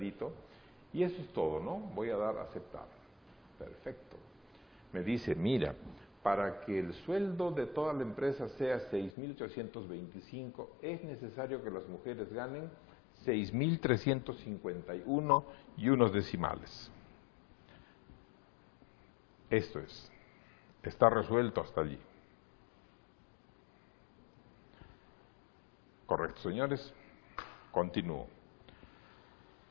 y eso es todo, ¿no? Voy a dar a aceptar. Perfecto. Me dice, mira, para que el sueldo de toda la empresa sea 6.825, es necesario que las mujeres ganen 6.351 y unos decimales. Esto es, está resuelto hasta allí. Correcto, señores. Continúo.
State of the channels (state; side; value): drops out; right; at 9.1 s